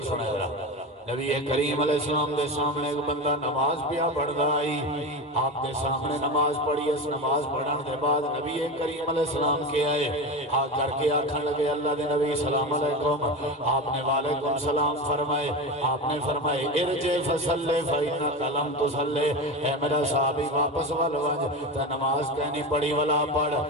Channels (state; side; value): normal; both; correlation 0.23